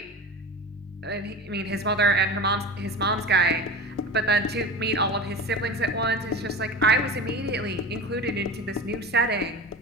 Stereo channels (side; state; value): both; normal; correlation 0.31